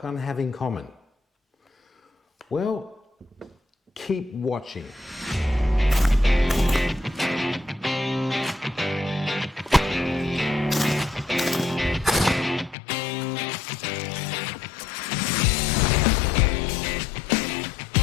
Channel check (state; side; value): drops out; right; at 12.8 s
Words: have in common? Well, keep watching.